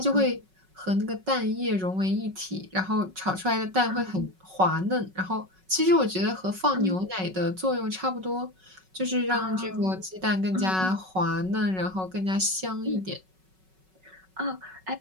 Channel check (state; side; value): late; left; 5.4 ms